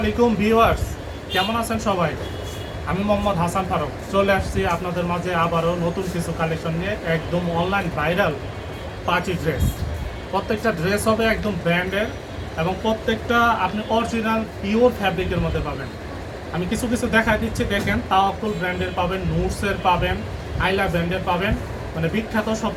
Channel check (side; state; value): both; identical; correlation 1.00